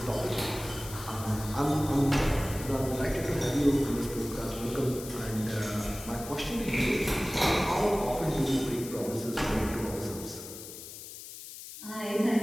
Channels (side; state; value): left; noise; hiss, 12 dB below the sound